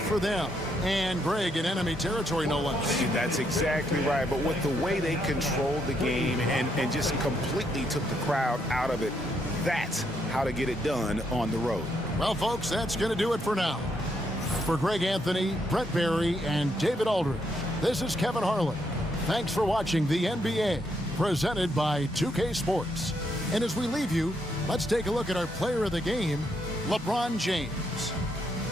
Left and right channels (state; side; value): normal; both; correlation 0.76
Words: for them. And Greg, in enemy territory, no less. That's exactly right. But with the way they controlled the game and just completely took the crowd out of it, that's how to get it done on the road. Well, folks, that's going to do it for now. For Greg Anthony, Brett Barry, and David Aldridge, this is Kevin Harlan. Thanks for watching the NBA, presented by 2K Sports. And as we leave you, let's take a look at our player of the game, LeBron James.